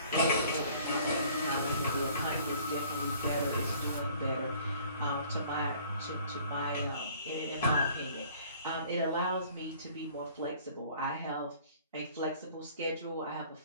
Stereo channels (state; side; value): inverted; both; correlation -0.54